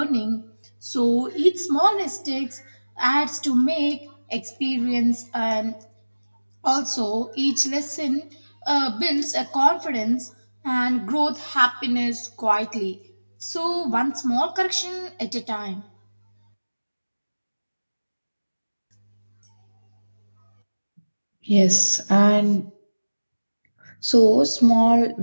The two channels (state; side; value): inverted; both; correlation -1.00